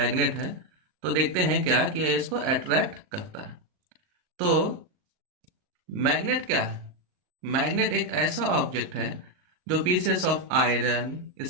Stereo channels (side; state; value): left; late; 38 ms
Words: है। तो देखते हैं क्या कि ये इसको अट्रैक्ट करता है। तो मैग्नेट क्या है? मैग्नेट एक ऐसा ऑब्जेक्ट है जो पीसेस ऑफ आयरन,